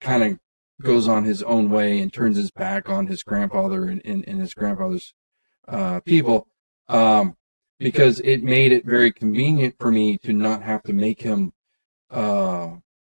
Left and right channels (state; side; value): inverted; both; correlation -1.00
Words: kind of goes on his own way and turns his back on his grandfather and his grandfather's people, because it made it very convenient for me to not have to make him,